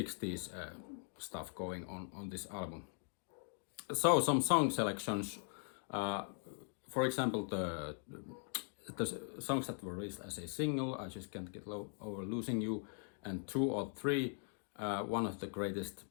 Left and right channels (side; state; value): right; silent; 51 dB below the other